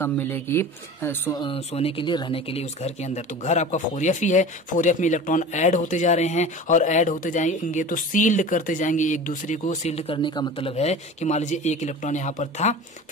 मिलेगी सोने के लिए, रहने के लिए उस घर के अंदर। तो घर आपका 4f ही है, 4f में इलेक्ट्रॉन ऐड होते जा रहे हैं और ऐड होते जाएंगे तो सील्ड करते जाएंगे एक दूसरे को। सील्ड करने का मतलब है कि मान लीजिए एक इलेक्ट्रॉन यहाँ पर था,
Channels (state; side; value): normal; both; correlation 0.35